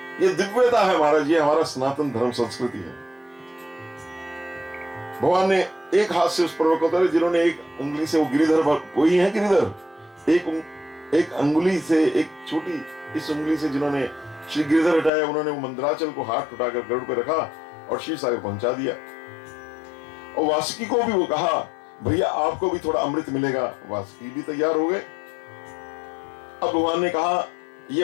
ये दिव्यता है महाराज, ये हमारा सनातन धर्म संस्कृति है। भगवान ने एक हाथ से उस पर्वत को उतारे, जिन्होंने एक उंगली से, वो गिरिधर, वही है गिरिधर, एक अंगुली से, एक छोटी इस उंगली से जिन्होंने श्री गिरिधर हटाया, उन्होंने वो मंदराचल को हाथ उठाकर गरुड़ पे रखा और क्षीर सागर पहुंचा दिया। और वासुकी को भी वो कहा, भैया आपको भी थोड़ा अमृत मिलेगा। वासुकी भी तैयार हो गए। अब भगवान ने कहा,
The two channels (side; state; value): right; drops out; at 15.1 s